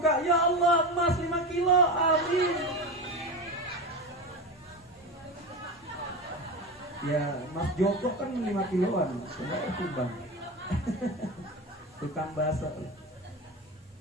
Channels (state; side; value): normal; both; correlation 0.23